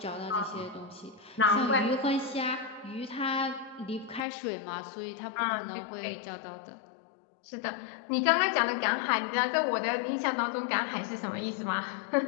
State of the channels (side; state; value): right; drops out; at 4.2 s